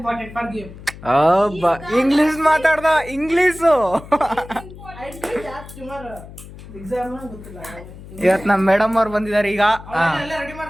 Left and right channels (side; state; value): left; noise; hum, 16 dB below the sound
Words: for game. English ಮಾತಾಡ್ದ, ಇಂಗ್ಲಿಷು. ಎಕ್ಸಾಮ್ ಗೊತ್ತಿಲ್ಲ. ಇವತ್ ನಮ್ ಮೇಡಮ್ ಅವ್ರು ಬಂದಿದ್ದಾರೆ ಈಗ. ಎಲ್ಲ ರೆಡಿ